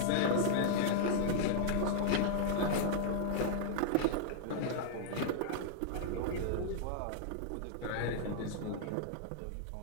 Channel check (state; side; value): different; both; correlation -0.01